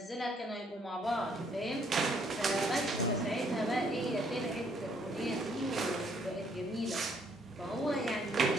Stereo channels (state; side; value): normal; both; correlation 0.67